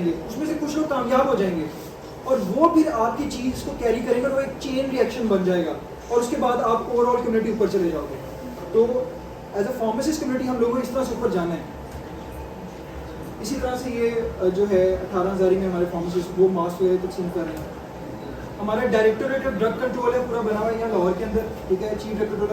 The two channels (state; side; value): identical; both; correlation 1.00